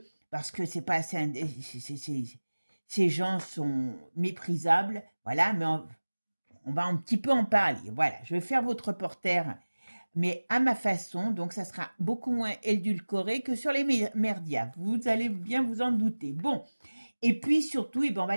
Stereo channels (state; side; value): inverted; both; correlation -1.00